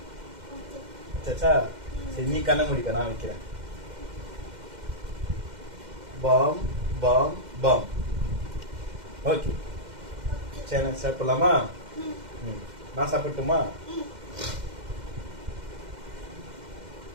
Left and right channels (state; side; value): late; left; 2.1 ms